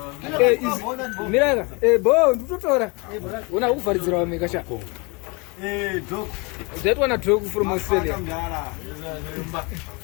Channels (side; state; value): right; quieter; 29.4 dB